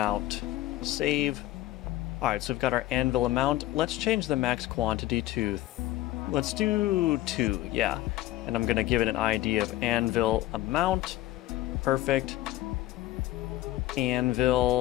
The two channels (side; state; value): right; quieter; 15.8 dB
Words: Save. All right, so we've got our anvil amount. Let's change the max quantity to, let's do 2, yeah. And I'm going to give it an ID of anvil amount. Perfect.